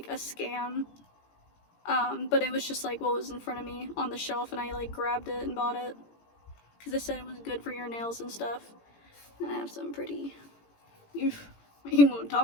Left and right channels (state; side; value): late; right; 18 ms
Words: a scam. But it was just like what was in front of me on the shelf, and I like grabbed it and bought it because they said it was good for your nails and stuff. And I have some pretty. You won't